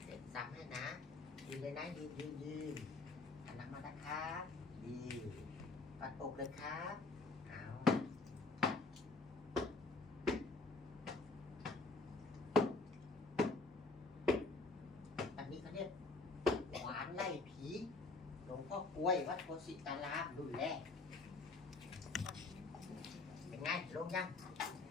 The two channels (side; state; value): right; quieter; 3.6 dB